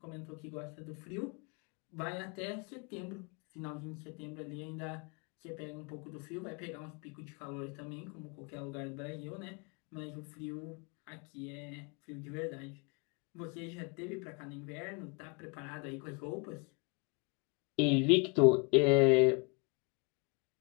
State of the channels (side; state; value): right; quieter; 31.8 dB